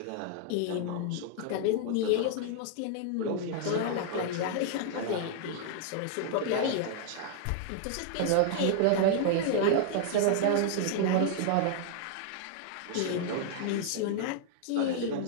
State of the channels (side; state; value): both; different; correlation 0.00